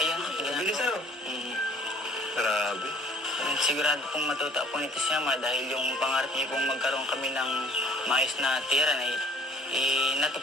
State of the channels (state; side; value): normal; both; correlation 0.53